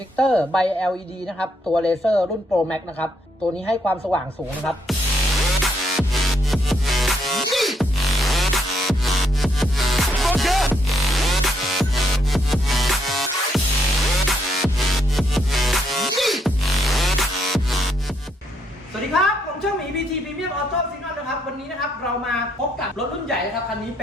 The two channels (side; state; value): both; normal; correlation 0.74